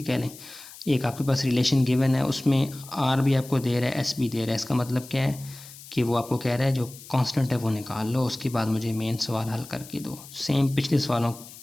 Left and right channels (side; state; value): left; noise; hiss, 17 dB below the sound